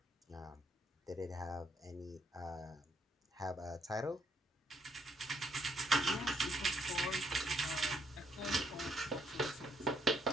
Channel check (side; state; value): both; normal; correlation 0.71